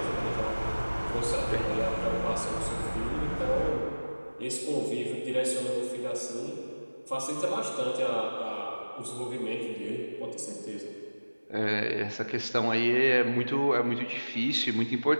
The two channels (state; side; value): inverted; both; correlation -1.00